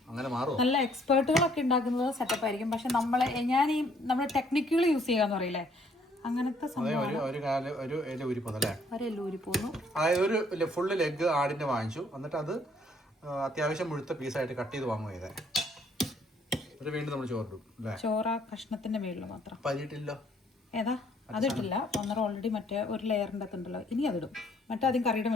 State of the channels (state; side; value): normal; both; correlation 0.64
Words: അങ്ങനെ മാറും. നല്ല എക്സ്പേർട്ടുകളൊക്കെ ഉണ്ടാക്കുന്നത് സെറ്റപ്പ് ആയിരിക്കും. പക്ഷെ നമ്മൾ ടെക്നിക്കുകൾ യൂസ് ചെയ്യാന്ന് പറയില്ലേ, അങ്ങനത്തെ സംഭവം. ഒരു എല ഊരി പോന്നല്ലേ, ഒരു എല ഊരി പോന്നു. അതായത് ഒരു ഫുള്ള് ലെഗ് ആടിന്റെ വാങ്ങിച്ചു, എന്നിട്ട് അത് അത്യാവശ്യം മുഴുത്ത പീസായിട്ട് കട്ട് ചെയ്ത് വാങ്ങുക ചെയ്തേ. വീണ്ടും നമ്മൾ ചോറിടും അല്ലേ? ചോറ കഷ്ണത്തിന്റെ മേളിൽ മാത്രം. പരിയിട്ടില്ലോ? ഏതാ? അതിട്ടില്ല. ഒന്നര ഓൾറെഡി മറ്റേ ഒരു ലെയറിന്റെ അകത്തുണ്ടല്ലോ, ഇനി അതിടും. മറ്റേ ആദ്യം കറിയുടെ